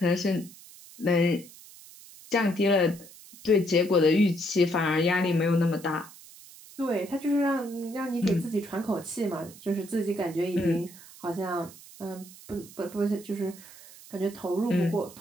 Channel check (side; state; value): right; noise; hiss, 19 dB below the sound